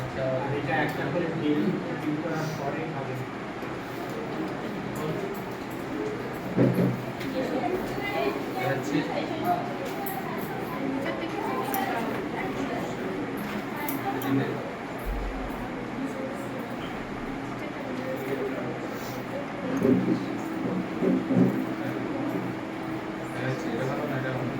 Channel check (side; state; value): both; identical; correlation 1.00